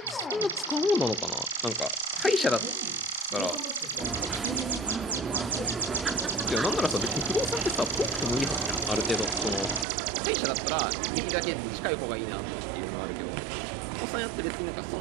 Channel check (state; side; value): drops out; left; at 9.9 s